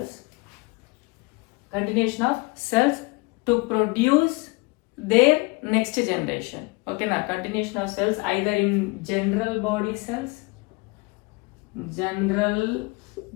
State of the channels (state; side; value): quieter; right; 26.9 dB